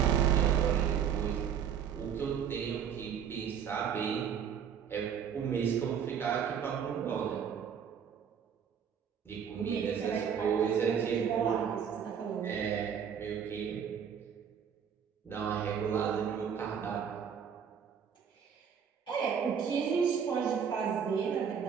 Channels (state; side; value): quieter; left; 7.8 dB